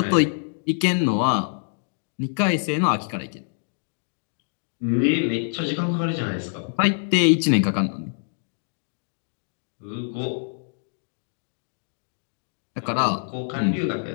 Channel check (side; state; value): right; silent; digital silence